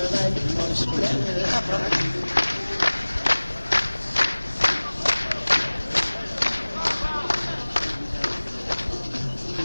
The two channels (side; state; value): both; inverted; correlation -1.00